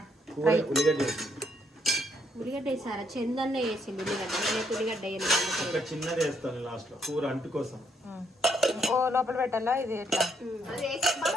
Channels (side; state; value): both; normal; correlation 0.72